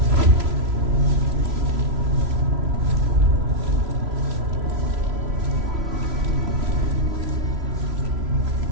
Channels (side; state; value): left; late; 3.0 ms